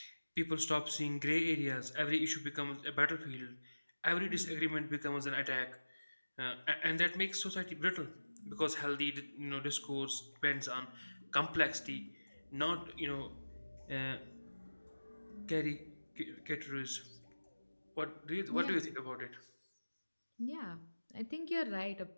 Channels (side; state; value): both; inverted; correlation -1.00